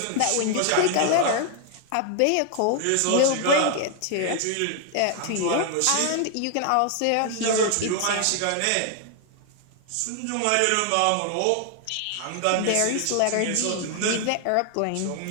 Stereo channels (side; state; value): both; different; correlation 0.00